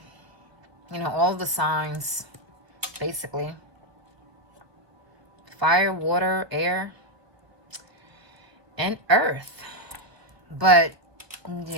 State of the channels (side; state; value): left; late; 1.4 ms